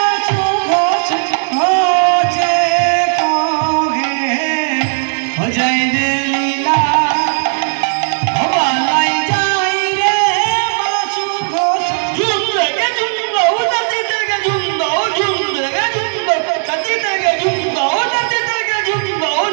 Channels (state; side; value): silent; left; 57 dB below the other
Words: घोष घोषे कहे हो जाए रे लीला, हो बालाई जाए रे बासु घोष झुम देगे झुम दो धरती देगे झुम दो झुम देगे झुम दो धरती देगे झुम दो धरती देगे झुम दो